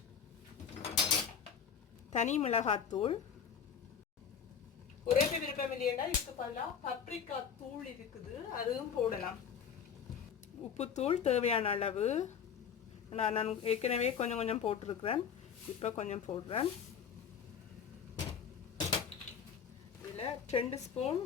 தனி மிளகாத்தூள். ஒரே விருப்பம் இல்லையா, இதுக்கு பதிலாக பப்ரிக்கா தூள் இருக்குது, அதுவும் போடலாம். உப்புத்தூள் தேவையான அளவு. நான் ஏற்கனவே கொஞ்சம் போட்டிருக்கிறேன். இப்போ கொஞ்சம் போடுறேன். இதில் 2 ஸ்பூன்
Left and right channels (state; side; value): quieter; right; 7.3 dB